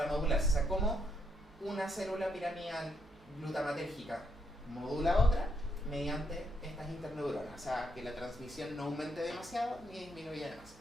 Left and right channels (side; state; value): both; normal; correlation 0.76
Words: modularse. O sea, cómo una célula piramidal glutamatérgica modula a otra mediante estas interneuronas. O sea, que la transmisión no aumente demasiado ni disminuya